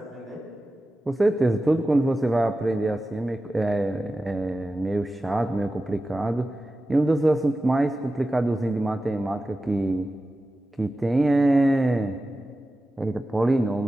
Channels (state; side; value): normal; both; correlation 0.94